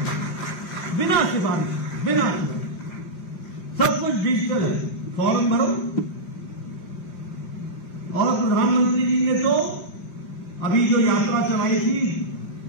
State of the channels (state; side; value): late; right; 5.4 ms